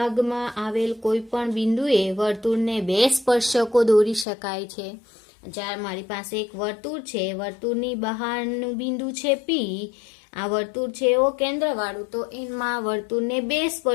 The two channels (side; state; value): right; drops out; at 4.2 s